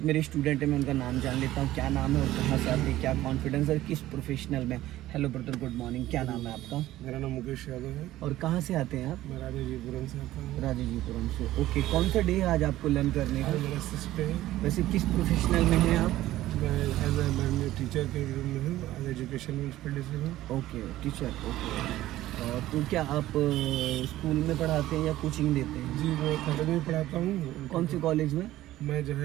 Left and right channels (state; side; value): quieter; left; 15.1 dB